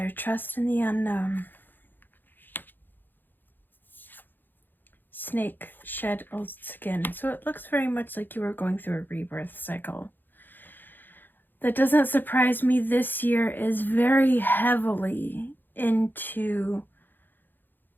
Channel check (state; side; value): late; right; 0.091 ms